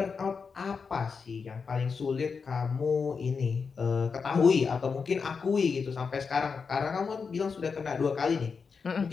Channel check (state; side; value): quieter; right; 5.4 dB